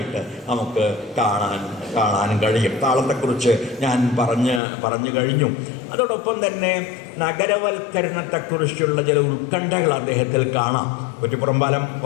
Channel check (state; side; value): drops out; right; at 4.6 s